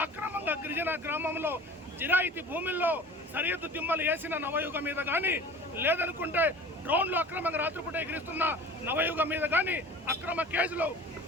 అక్రమంగా గిరిజన గ్రామంలో జిరాయితీ భూముల్లో సరిహద్దు దిమ్మలు వేసిన నవయుగ మీద కానీ, లేదనుకుంటే డ్రోన్లు అక్రమంగా రాత్రిపూట ఎగిరిస్తున్న నవయుగ మీద కానీ అక్రమ కేసులు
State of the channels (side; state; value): both; normal; correlation 0.42